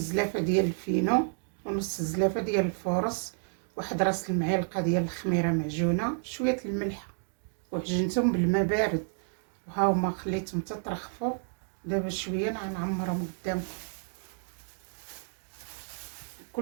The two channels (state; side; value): silent; left; 57 dB below the other